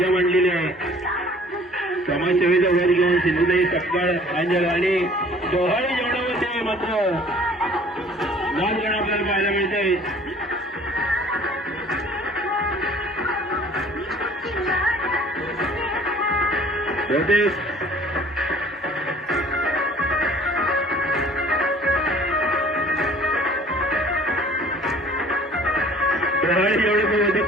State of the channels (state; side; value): normal; both; correlation 0.52